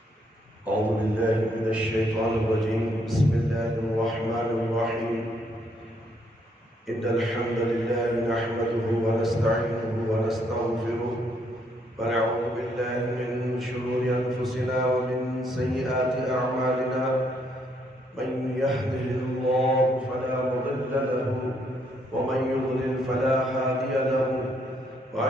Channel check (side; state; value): both; normal; correlation 0.72